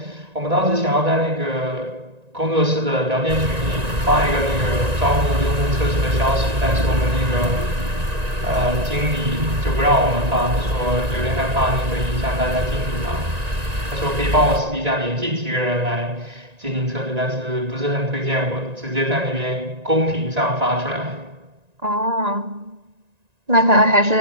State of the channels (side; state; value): left; late; 1.9 ms